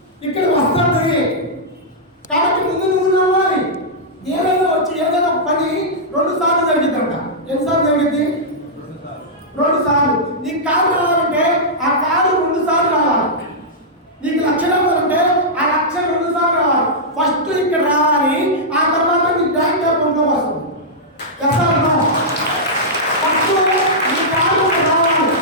ఇక్కడ వస్తుంది కాబట్టి ముందు నువ్వు నవ్వాలి. ఏదైనా వచ్చి ఏదైనా పని 2 సార్లు జరిగిద్దంట. ఎన్నిసార్లు జరిగింది? 2 సార్లు. నీకు కారు రావాలంటే ఆ కారు 2 సార్లు రావాలి. నీకు లక్ష్యం రావాలంటే ఆ లక్ష్యం 2 సార్లు రావాలి. ఫస్ట్ ఇక్కడ రావాలి, ఆ తర్వాత నీ బ్యాంక్ అకౌంట్లో వస్తుంది. ఫస్ట్ నీ కారు రావాలి,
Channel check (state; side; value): normal; both; correlation -0.10